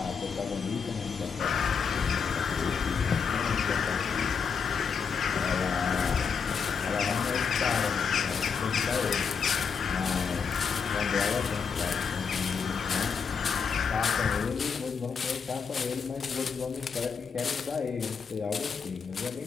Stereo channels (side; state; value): right; quieter; 6.1 dB